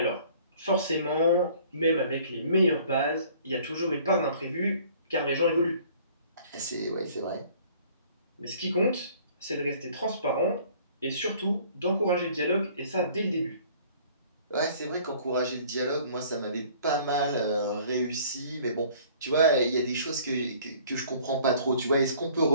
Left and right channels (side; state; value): both; inverted; correlation -0.54